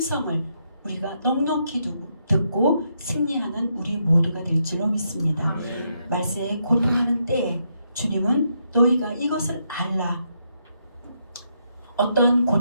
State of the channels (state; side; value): inverted; both; correlation -0.78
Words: 우리가 넉넉히 듣고 승리하는 우리 모두가 될 줄로 믿습니다. 말세에 고통하는 때에 주님은 너희가 이것을 알라. 어떠한